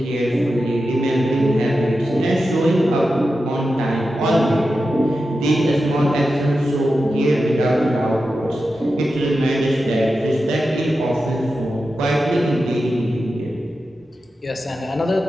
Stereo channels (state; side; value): normal; both; correlation 0.91